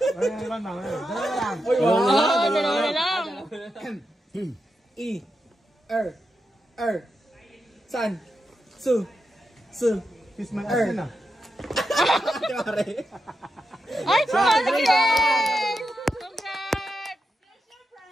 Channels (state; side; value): normal; both; correlation 0.87